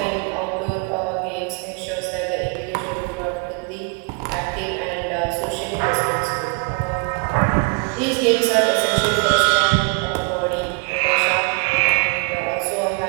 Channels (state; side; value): quieter; left; 36.6 dB